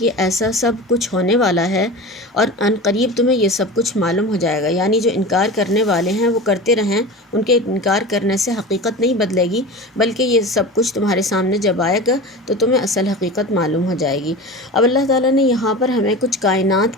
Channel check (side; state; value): both; normal; correlation 0.31